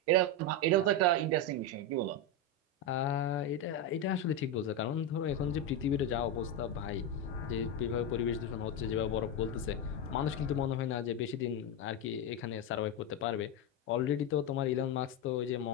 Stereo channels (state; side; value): normal; both; correlation 0.09